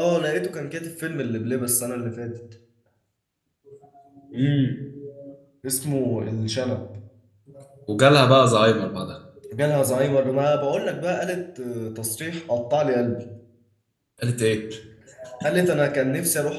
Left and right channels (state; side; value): identical; both; correlation 1.00